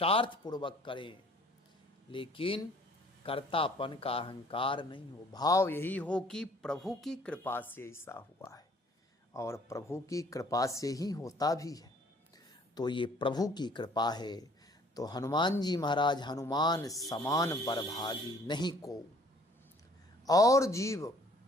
पूर्वक करें, लेकिन कर्तापन का अहंकार नहीं हो, भाव यही हो कि प्रभु की कृपा से ऐसा हुआ है और प्रभु की कृपा से ही होता भी है। तो ये प्रभु की कृपा है। तो हनुमान जी महाराज हनुमान समान बड़भागी नहीं को। और जीव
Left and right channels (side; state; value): both; normal; correlation 0.57